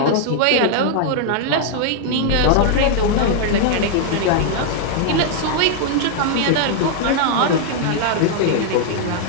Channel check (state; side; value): different; both; correlation -0.01